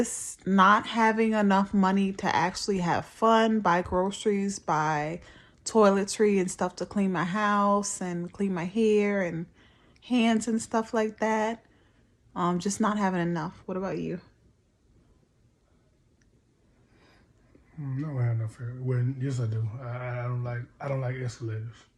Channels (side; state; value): both; identical; correlation 1.00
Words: not having enough money to actually have fun, buy groceries, buy toiletry and stuff to clean my house and clean my hair and hands and stuff like that. Just not having enough. What about you? No, I have no fear. Well, yes, I do. I don't like escalators.